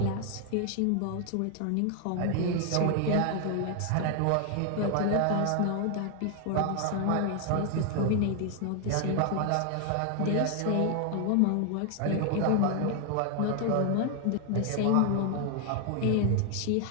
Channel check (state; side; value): different; both; correlation 0.00